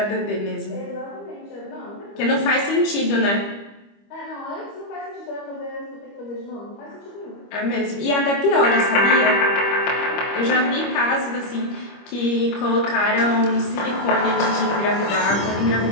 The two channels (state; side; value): late; right; 25 ms